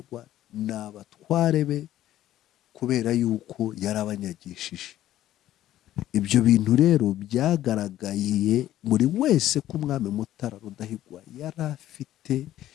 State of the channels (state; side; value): quieter; right; 13.3 dB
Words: ni abatware be, kubera yuko yarabanyagishije. Ibyo bintu rero byagaragaye muri wese ko umwami Mutara Rudahigwa yari afite